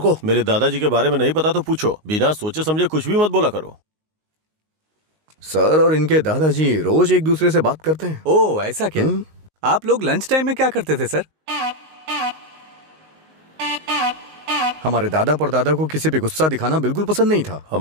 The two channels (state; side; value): late; left; 19 ms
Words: मेरे दादाजी के बारे में नहीं पता तो पूछो, बिना सोचे समझे कुछ भी मत बोला करो। सर और इनके दादाजी रोज एक दूसरे से बात करते हैं। ओह, ऐसा क्या? आप लोग लंच टाइम में क्या करते थे सर? हमारे दादा परदादा को किसी पे गुस्सा दिखाना बिल्कुल पसंद नहीं था।